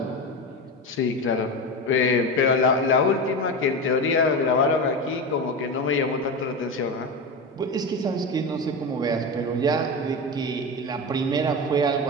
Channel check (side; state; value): both; normal; correlation 0.21